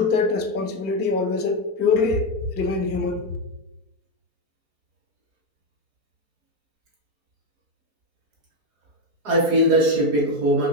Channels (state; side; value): late; left; 4.8 ms